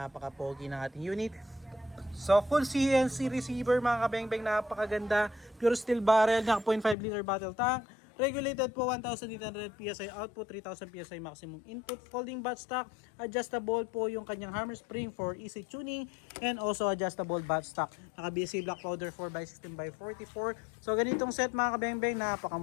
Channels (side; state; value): right; drops out; at 7.0 s